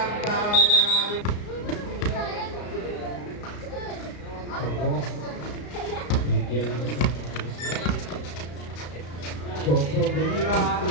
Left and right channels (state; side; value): late; right; 34 ms